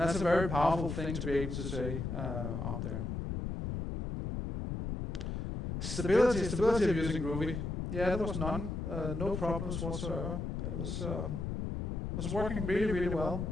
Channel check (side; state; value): left; noise; rumble, 3 dB below the sound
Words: a very powerful thing to be able to say out there. Stability of using Groovy. Yeah, there was none, no problems whatsoever. It was working really, really well